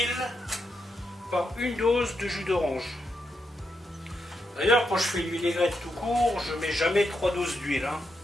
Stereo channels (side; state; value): both; normal; correlation 0.83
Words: par 1 dose de jus d'orange. D'ailleurs, quand je fais une vinaigrette tout court, je ne mets jamais 3 doses d'huile, hein.